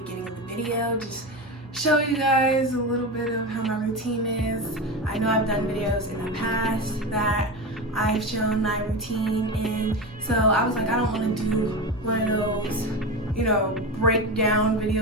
of the video. Just show you guys a little bit of how my routine is. I know I've done videos in the past that I've shown my routine in, so I was like, I don't want to do one of those, breakdown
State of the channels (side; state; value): both; normal; correlation 0.22